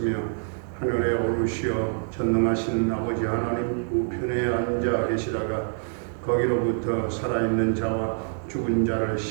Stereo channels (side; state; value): left; silent; 61 dB below the other